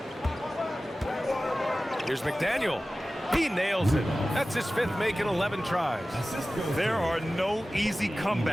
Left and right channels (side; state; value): both; normal; correlation 0.96